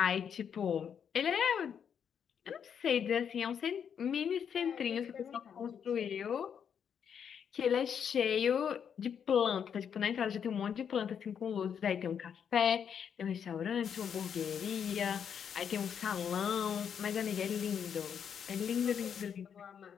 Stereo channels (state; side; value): quieter; right; 7.8 dB